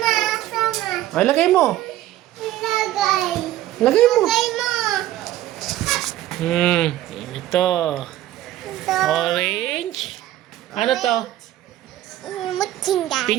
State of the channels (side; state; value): left; quieter; 14.2 dB